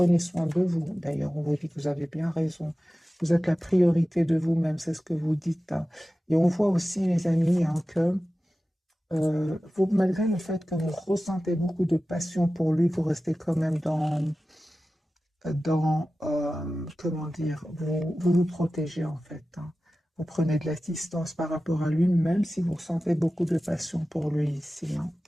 soin de vous. D'ailleurs, on vous dit que vous avez bien raison. Vous êtes la priorité de vous-même. C'est ce que vous dites. Hein. Et on voit aussi, les amis, hein, que malgré le fait que vous ressentez beaucoup de passion pour lui, vous restez quand même comment dire, vous protégez en fait. Hein. Vous prenez de la distance par rapport à lui, même si vous ressentez beaucoup de passion pour lui ici. Hein.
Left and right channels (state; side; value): normal; both; correlation 0.95